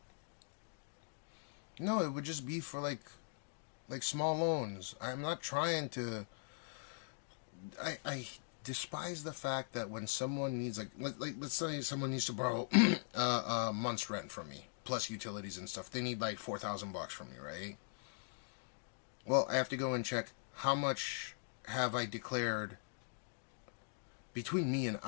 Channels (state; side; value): silent; right; digital silence